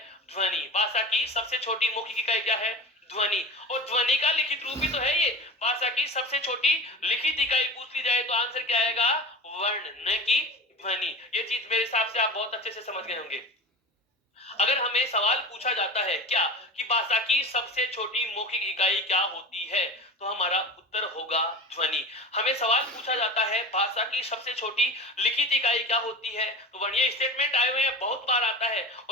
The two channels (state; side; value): normal; both; correlation 0.32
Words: ध्वनि। भाषा की सबसे छोटी मौखिक इकाई क्या है? ध्वनि। और ध्वनि का लिखित रूप ही तो है ये। भाषा की सबसे छोटी लिखित इकाई पूछ ली जाए तो आंसर क्या आएगा? वर्ण, न कि ध्वनि। ये चीज मेरे हिसाब से आप बहुत अच्छे से समझ गए होंगे। अगर हमें सवाल पूछा जाता है क्या कि भाषा की सबसे छोटी मौखिक इकाई क्या होती है, तो हमारा उत्तर होगा ध्वनि। हमें सवाल पूछा जाता है भाषा की सबसे छोटी लिखित इकाई क्या होती है, तो वर्ण। ये स्टेटमेंट आए हुए हैं, बहुत बार आता है,